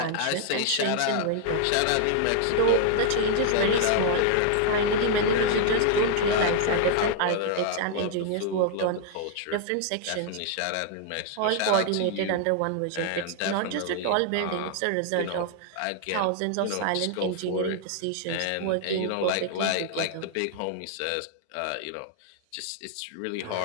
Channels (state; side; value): different; both; correlation 0.00